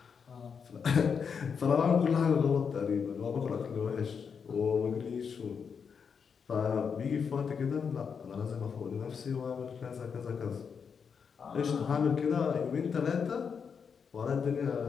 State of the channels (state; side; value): quieter; right; 6.4 dB